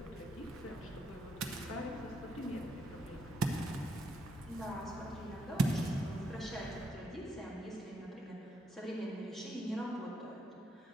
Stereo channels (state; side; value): normal; both; correlation 0.77